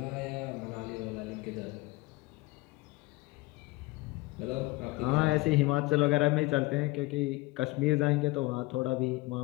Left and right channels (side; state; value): right; quieter; 21.2 dB